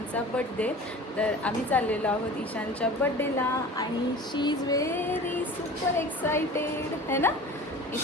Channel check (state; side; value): normal; both; correlation 0.39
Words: बड्डे. तर आम्ही चाललेलो आहोत ईशानच्या बड्डेला आणि शी इज व्हेरी सुपर एक्सायटेड है ना.